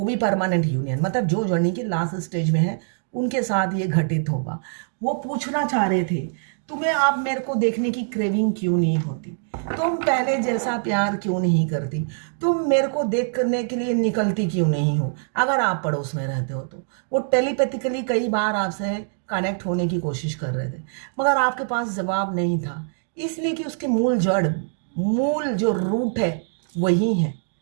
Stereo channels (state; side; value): silent; left; digital silence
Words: भी परमानेंट यूनियन, मतलब जो जर्नी के लास्ट स्टेज में है, उनके साथ ये घटित होगा। वो पूछना चाह रहे थे, तुम्हें आप मेरे को देखने की क्रेविंग क्यों नहीं होती, तुम पहले जैसा प्यार क्यों नहीं करती, तुम मेरे को देख करने के लिए निकलती क्यों नहीं हो। अगर आप पड़ोस में रहते हो तो वो टेलीपैथिकली कई बार आपसे कनेक्ट होने की कोशिश कर रहे थे, मगर आपके पास जवाब नहीं था, इसलिए कि उसके मूल जो रूट है वही है।